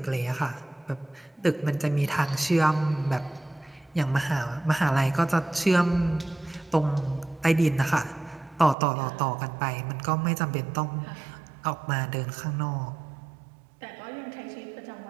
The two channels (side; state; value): left; drops out; at 8.8 s